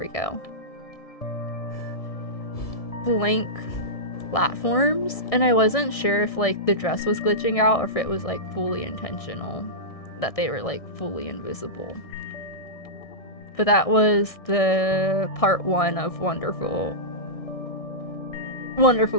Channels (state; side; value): late; right; 1.6 ms